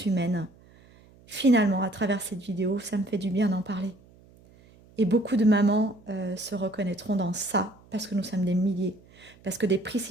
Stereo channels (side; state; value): right; noise; hum, 27 dB below the sound